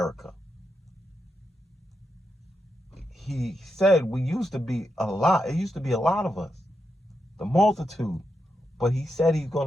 He said we used to be a lot. It used to be a lot of us, the multitude. But he said he's going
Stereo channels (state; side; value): normal; both; correlation 0.85